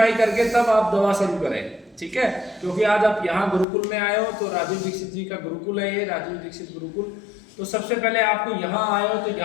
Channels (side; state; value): right; drops out; at 3.7 s